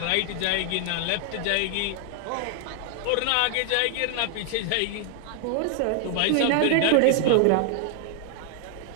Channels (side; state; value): both; different; correlation 0.00